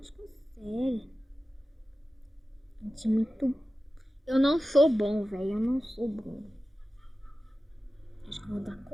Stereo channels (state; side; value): normal; both; correlation 0.94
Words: consegue. A gente é muito... Eu não sou bom, velho. Eu não sou bom. Acho que eu vou dar